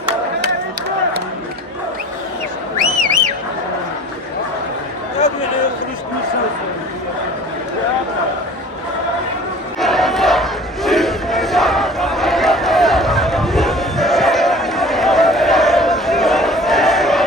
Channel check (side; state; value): both; normal; correlation 0.45